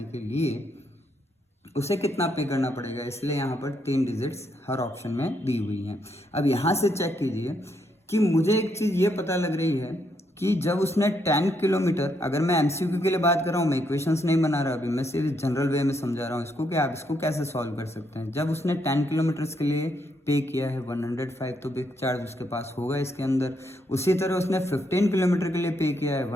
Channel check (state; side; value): normal; both; correlation 0.76